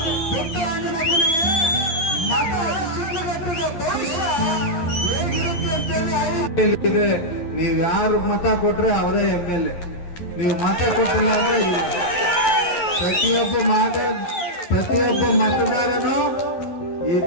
ಪುಟ್ಟಣ್ಣನಿಗೆ ಮತ ಶಿಡ್ಲಘಟ್ಟದ ಭವಿಷ್ಯ ಹೇಗಿರುತ್ತೆ ಅಂತೇಳಿ ನೀವು ಯಾರು ಮತ ಕೊಟ್ರೆ ಅವರೇ MLA. ನೀವು ಮತ ಕೊಟ್ಟಿಲ್ಲ ಅಂದ್ರೆ ಪ್ರತಿಯೊಬ್ಬ ಮತದಾರನು ಈ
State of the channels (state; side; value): late; right; 11 ms